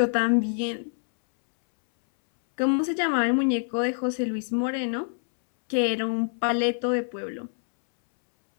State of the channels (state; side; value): silent; right; 61 dB below the other